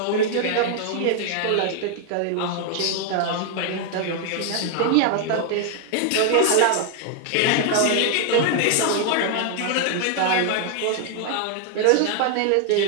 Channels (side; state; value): both; different; correlation 0.00